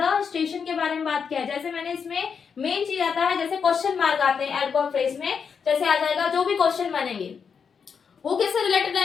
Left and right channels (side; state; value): right; quieter; 6.4 dB